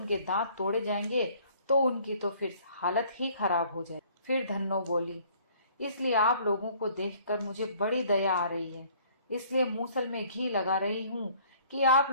दांत तोड़े जाएंगे तो उनकी तो फिर हालत ही खराब हो जाए। फिर धन्नो बोली, इसलिए आप लोगों को देखकर मुझे बड़ी दया आ रही है, इसलिए मूसल में घी लगा रही हूँ कि आप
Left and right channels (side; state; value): both; inverted; correlation -0.57